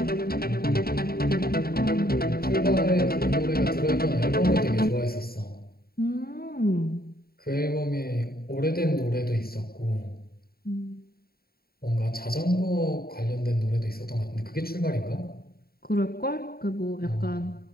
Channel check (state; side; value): late; right; 0.44 ms